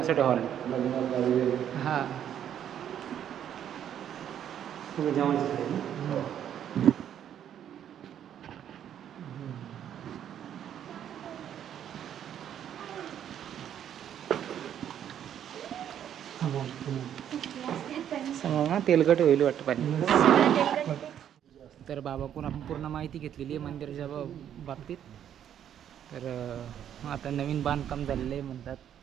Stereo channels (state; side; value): quieter; left; 9.8 dB